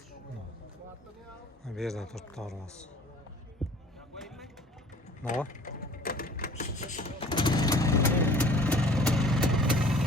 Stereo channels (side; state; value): both; normal; correlation 0.48